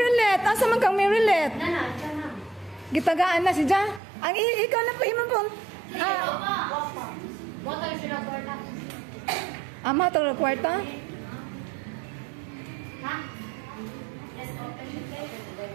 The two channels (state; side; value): drops out; left; at 4.0 s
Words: asa man kang Marylet? Gitagaan na si Ja. Ang ikaw na po imo po. Ama to kwarta.